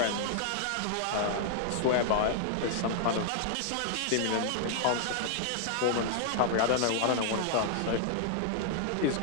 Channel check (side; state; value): both; different; correlation 0.00